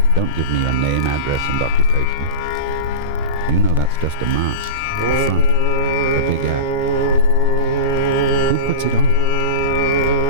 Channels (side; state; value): both; normal; correlation -0.19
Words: Don't give me your name, address, and occupation. You know that's just a mask, a front, a big act. Who puts it on?